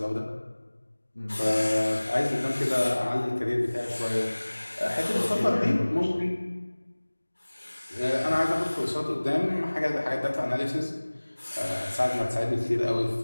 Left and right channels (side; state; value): both; inverted; correlation -1.00